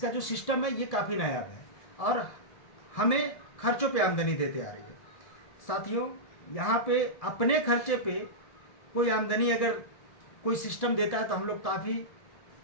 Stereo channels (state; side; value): late; right; 1.7 ms